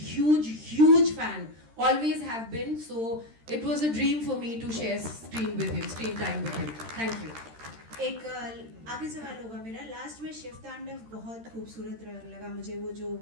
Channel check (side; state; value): left; late; 13 ms